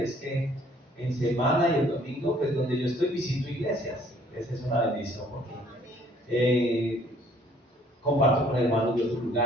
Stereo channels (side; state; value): both; normal; correlation 0.59